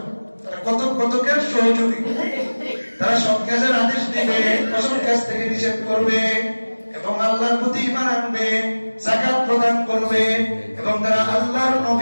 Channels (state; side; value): inverted; both; correlation -1.00